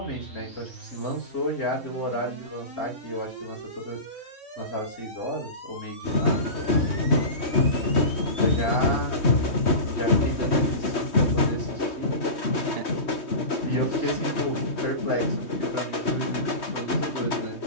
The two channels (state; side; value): late; right; 3.2 ms